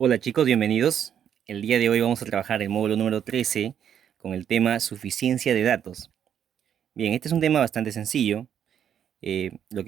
chicos, bienvenidos. El día de hoy vamos a trabajar el módulo número 13 con el tema suficiencia de datos. Bien, este es un tema bastante sencillo. Lo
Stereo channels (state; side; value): quieter; left; 9.0 dB